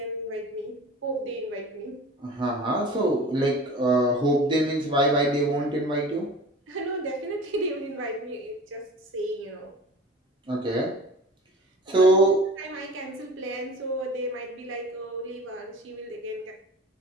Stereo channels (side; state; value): both; normal; correlation 0.39